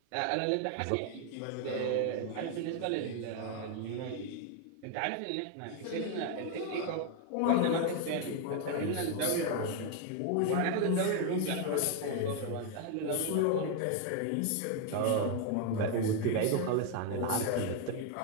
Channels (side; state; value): both; different; correlation 0.01